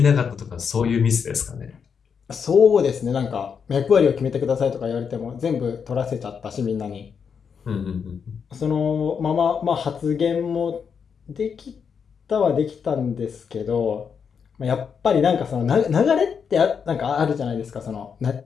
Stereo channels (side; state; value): right; quieter; 6.6 dB